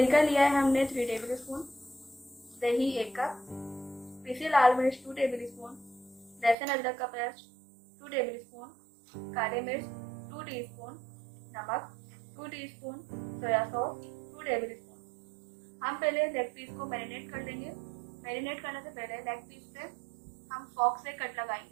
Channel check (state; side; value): drops out; left; at 6.6 s